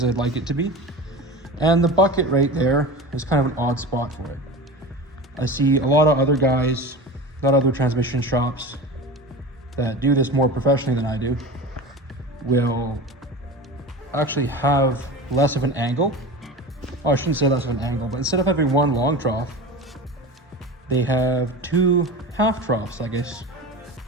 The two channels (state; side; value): normal; both; correlation 0.30